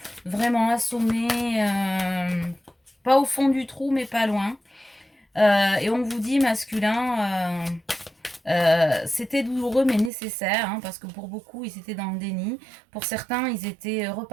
vraiment assommés, pas au fond du trou, mais pas loin. Et on vous dit masculin, c'était douloureux mais nécessaire, parce que pour beaucoup ils étaient dans le déni, pour certains ils étaient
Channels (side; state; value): left; drops out; at 10.1 s